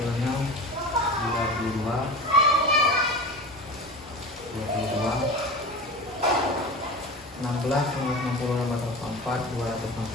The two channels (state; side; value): normal; both; correlation 0.30